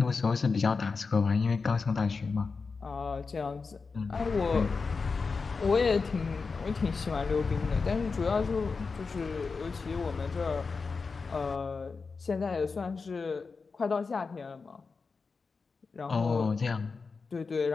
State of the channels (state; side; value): quieter; right; 4.6 dB